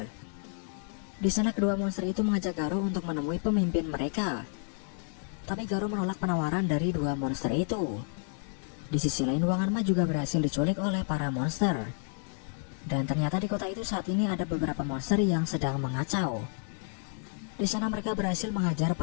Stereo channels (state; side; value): silent; right; 57 dB below the other